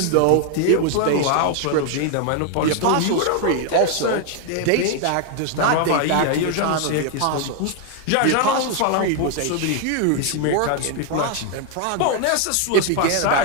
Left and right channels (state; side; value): different; both; correlation 0.00